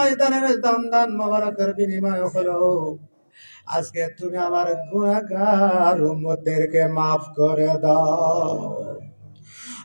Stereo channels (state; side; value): inverted; both; correlation -1.00